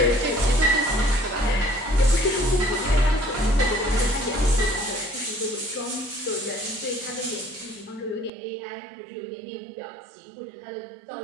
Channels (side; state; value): left; drops out; at 8.3 s